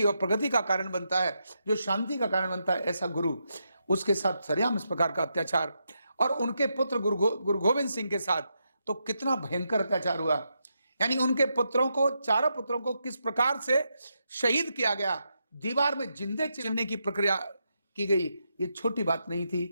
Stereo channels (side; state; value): both; inverted; correlation -0.83